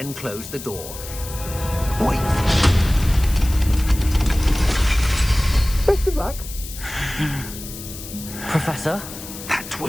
close the door. Wait! Best of luck. Professor? That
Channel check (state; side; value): noise; left; hiss, 12 dB below the sound